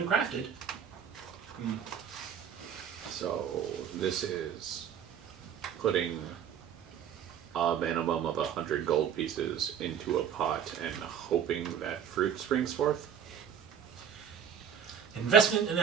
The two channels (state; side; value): quieter; left; 8.2 dB